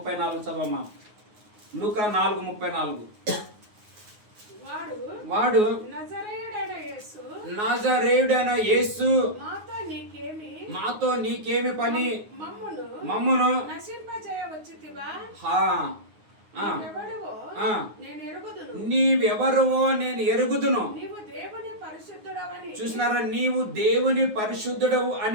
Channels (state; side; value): late; left; 9.5 ms